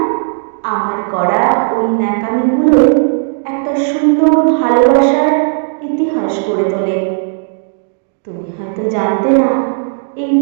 আমার করা ওই ন্যাকামিগুলো একটা সুন্দর ভালোবাসার ইতিহাস গড়ে তোলে। তুমি হয়তো জানতে না, এই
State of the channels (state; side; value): silent; left; digital silence